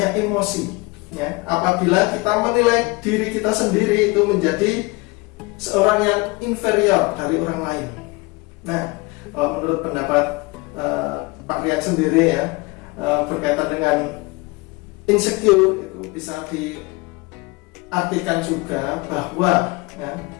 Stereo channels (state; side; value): quieter; right; 25.0 dB